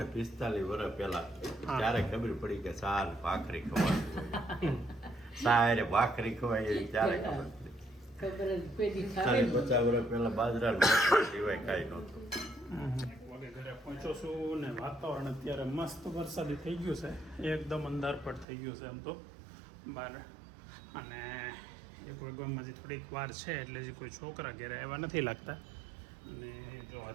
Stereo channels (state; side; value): drops out; left; at 18.4 s